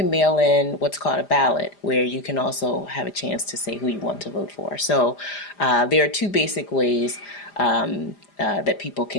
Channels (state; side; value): late; right; 5.0 ms